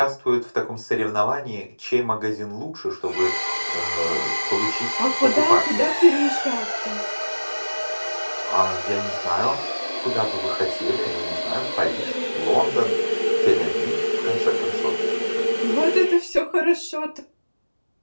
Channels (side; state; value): both; inverted; correlation -1.00